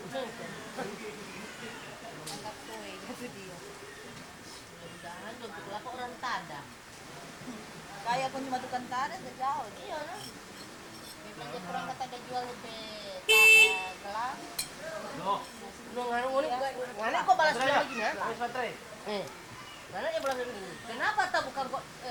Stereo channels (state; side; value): identical; both; correlation 1.00